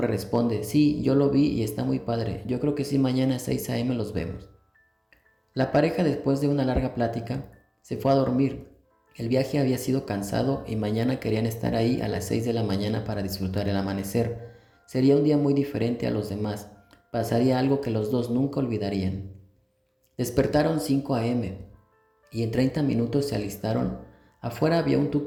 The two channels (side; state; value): both; identical; correlation 1.00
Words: responde, sí, yo lo vi y está muy padre, yo creo que sí mañana a 6 a.m. los vemos. La pareja después de una larga plática se fue a dormir. El viaje había sido cansado y mañana querían estar ahí a las 6 de la mañana para disfrutar el amanecer. Sería un día muy diferente a los demás, pasaría algo que los dos nunca olvidarían. Despertaron 5 a.m. y en 30 minutos se alistaron. Afuera había un